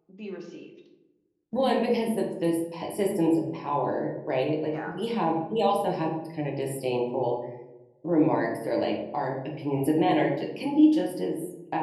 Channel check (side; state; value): both; identical; correlation 1.00